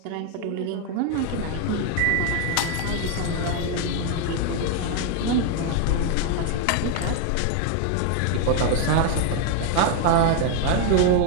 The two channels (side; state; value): both; different; correlation 0.01